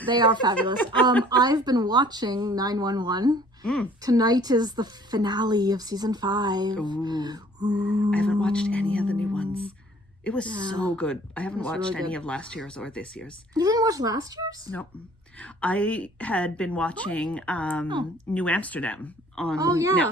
They are fabulous. I've been watching 911. Tonight is the finale of season 5. Ooh. I haven't watched any of the new ones. It was so good. I haven't watched really any of last year's or this year's. You didn't watch last year's? Nope. I had been watching New Amsterdam on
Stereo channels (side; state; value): both; normal; correlation 0.54